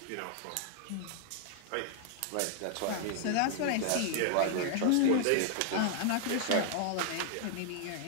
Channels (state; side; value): different; both; correlation 0.00